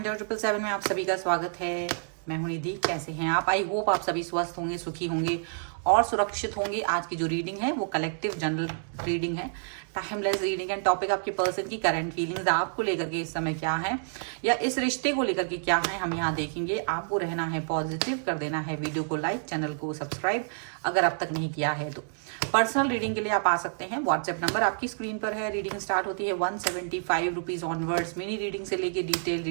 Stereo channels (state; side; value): silent; left; digital silence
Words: 777 में आप सभी का स्वागत है। मैं हूं निधि। कैसे हैं आप? आई होप आप सभी स्वस्थ होंगे, सुखी होंगे और सुरक्षित होंगे। आज की जो रीडिंग है वो कलेक्टिव जनरल रीडिंग है, टाइमलेस रीडिंग है। टॉपिक आपके पर्सन की करंट फीलिंग्स आपको लेकर के इस समय क्या है, या इस रिश्ते को लेकर के क्या है, हम यहाँ देखेंगे। आपको रहना है पॉजिटिव, कर देना है वीडियो को लाइक, चैनल को सब्सक्राइब अगर अब तक नहीं किया है तो। पर्सनल रीडिंग के लिए आप आ सकते हैं। व्हाट्सएप नंबर आपकी स्क्रीन पर है। रीडिंग स्टार्ट होती है 175 रुपीज ऑनवर्ड्स। मिनी रीडिंग से लेके डिटेल